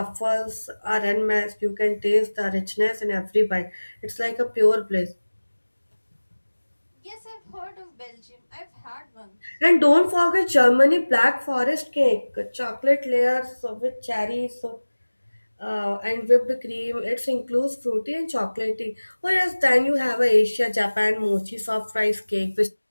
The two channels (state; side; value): inverted; both; correlation -1.00